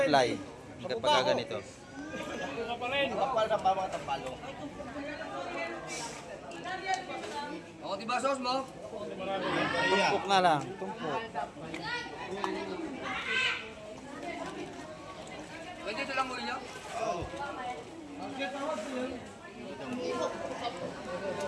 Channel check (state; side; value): identical; both; correlation 1.00